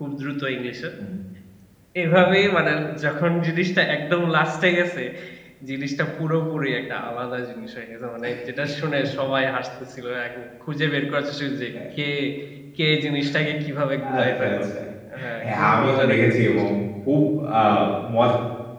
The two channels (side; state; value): both; identical; correlation 1.00